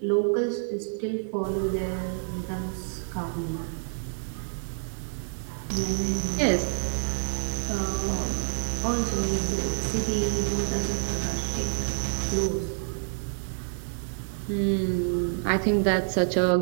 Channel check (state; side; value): silent; left; digital silence